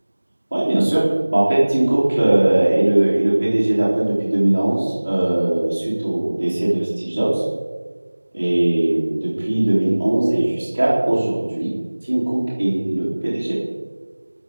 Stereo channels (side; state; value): both; inverted; correlation -1.00